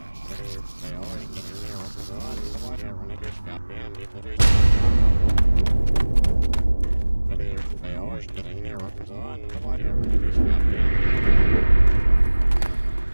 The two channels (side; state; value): both; inverted; correlation -1.00